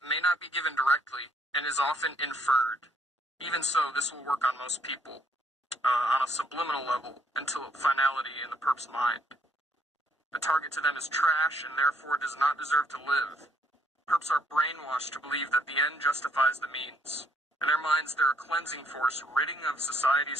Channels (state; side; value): normal; both; correlation 0.69